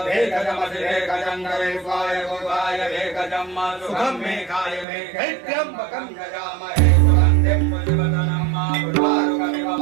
गोवाय भेकजं सुखं मे काय मे कैत्यम्बकं यजामहे सुगन्धिं पुष्पवदनं मा पुष्पारुकमिव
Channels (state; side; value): drops out; left; at 4.9 s